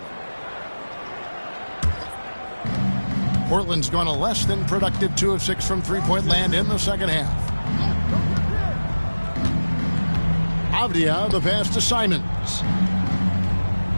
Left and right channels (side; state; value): both; inverted; correlation -1.00